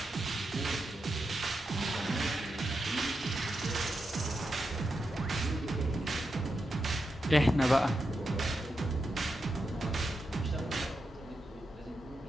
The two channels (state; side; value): normal; both; correlation 0.87